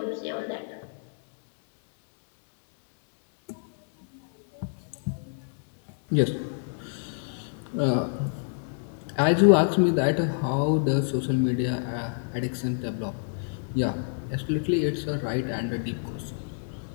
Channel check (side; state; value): right; silent; digital silence